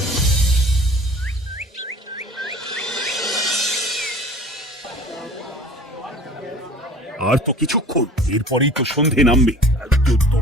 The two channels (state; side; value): normal; both; correlation 0.44